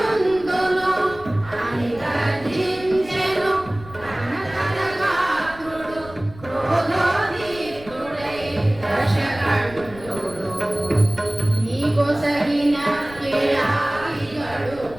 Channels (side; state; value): left; noise; rumble, 18 dB below the sound